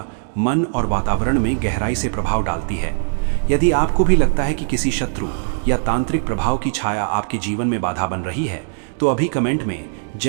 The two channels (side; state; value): left; silent; digital silence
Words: मन और वातावरण में गहराई से प्रभाव डालती है। यदि आपको भी लगता है कि किसी शत्रु या तांत्रिक प्रभाव की छाया आपके जीवन में बाधा बन रही है, तो अभी कमेंट में